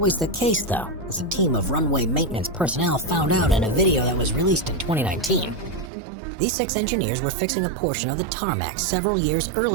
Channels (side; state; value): left; drops out; at 5.9 s